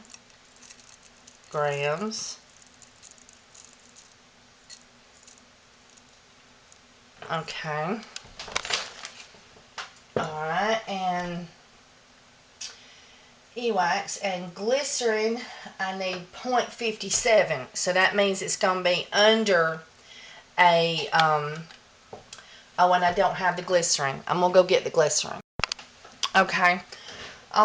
grams. Okay. Alright, and E-wax and glycerin, I need 0.57. So that means it's going to be under a, oh, and I don't have the glycerin. I'm going to go get the glycerin. Okay.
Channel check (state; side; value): identical; both; correlation 1.00